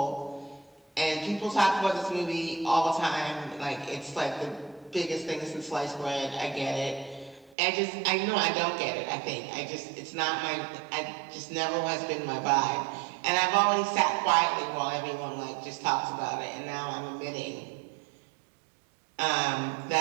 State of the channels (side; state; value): left; drops out; at 7.6 s